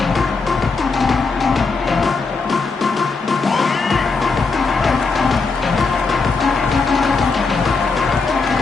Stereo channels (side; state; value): right; quieter; 4.3 dB